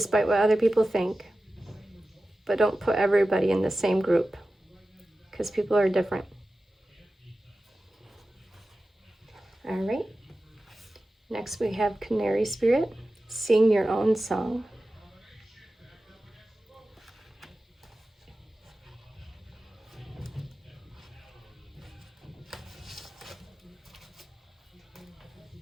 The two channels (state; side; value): normal; both; correlation 0.94